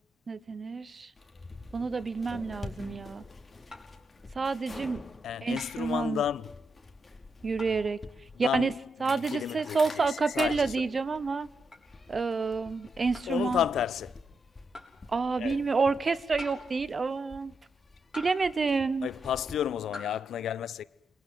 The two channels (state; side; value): normal; both; correlation 0.83